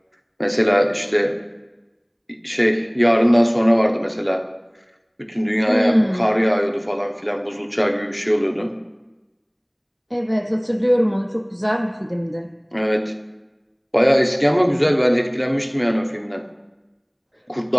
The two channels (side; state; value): both; identical; correlation 1.00